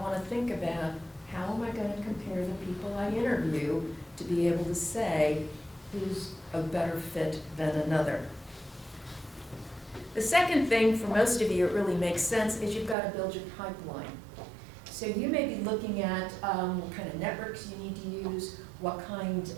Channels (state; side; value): drops out; left; at 13.0 s